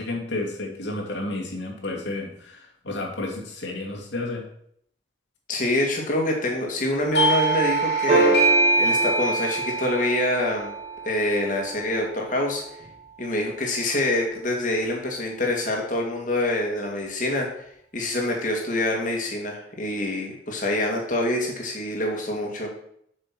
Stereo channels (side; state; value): both; normal; correlation 0.05